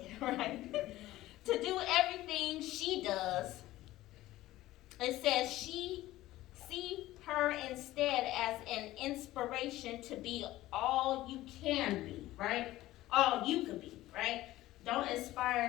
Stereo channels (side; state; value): right; quieter; 16.2 dB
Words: right? To do everything she does. It says, see her instead as an inspiration to be all you can be, right? All you could be, right? Don't